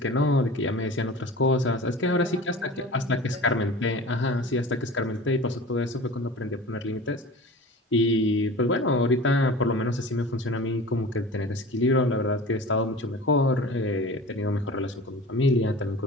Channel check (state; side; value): normal; both; correlation 0.37